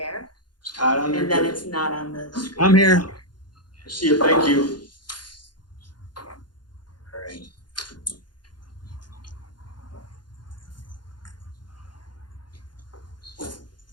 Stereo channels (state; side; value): late; right; 0.71 ms